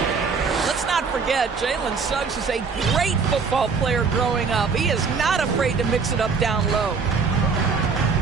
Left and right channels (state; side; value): quieter; left; 5.2 dB